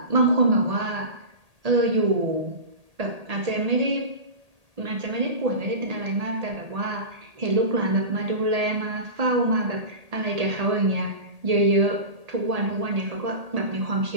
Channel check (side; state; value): left; late; 1.8 ms